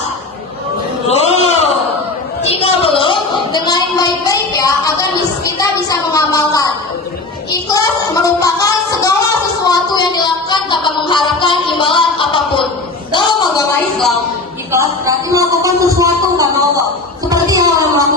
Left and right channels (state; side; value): quieter; right; 3.3 dB